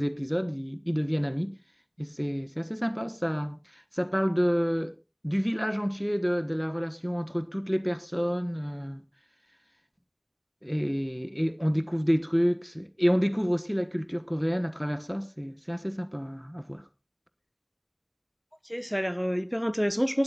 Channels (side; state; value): both; identical; correlation 1.00